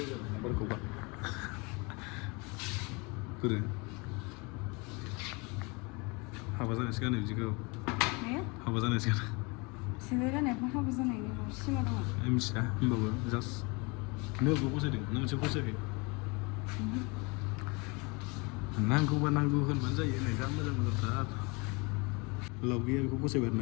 बोरो हाबा जानायसो गानो बिदिखौ हाबा जानायसो गानो सेन्देल गाननायखौ हाबा जानायनि सिमा दङ मिथिया होमबाबो जास्ट नोंबो फसायदों नों मोनसे फसायाखै नांगौबा नांगौ होनबानो जायो नै जा मोजां मोजांथार लावगेया बेखौ फसायबाय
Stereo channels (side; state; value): right; quieter; 28.8 dB